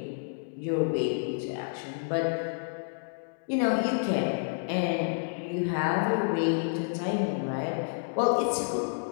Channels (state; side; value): silent; right; digital silence